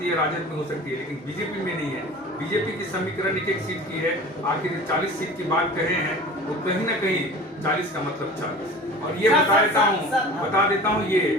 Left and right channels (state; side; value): normal; both; correlation 0.39